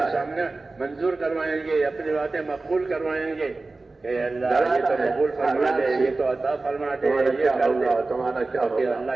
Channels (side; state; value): left; quieter; 3.4 dB